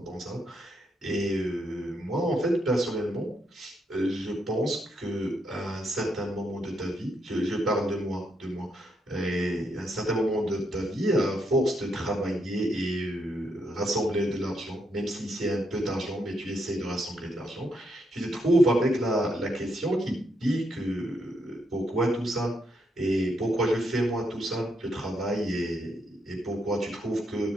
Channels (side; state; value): both; normal; correlation 0.78